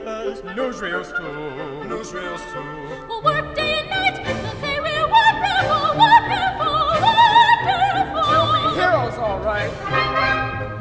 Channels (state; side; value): identical; both; correlation 1.00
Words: Newsreels too. Newsreels too. We'll work day and night. They'll say we're wonderful, wonderful, wonderful. You'll be heroes, all right.